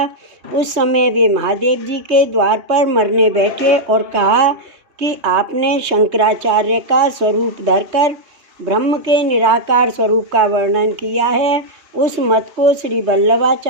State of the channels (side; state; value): left; late; 3.2 ms